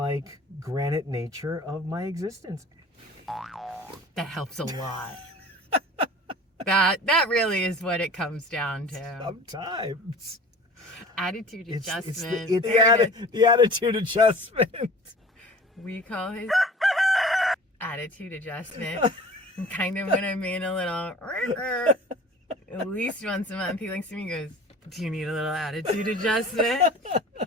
granite nature of my existence. That helps a lot. That really is what it comes down to. Sometimes. Attitude adjustment. It's the attitude adjustment. We call it attitude adjustment. And kind of when I'm being a little, at least once a month, he looks at me and goes, do you need a little attitude adjustment?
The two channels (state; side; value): normal; both; correlation 0.42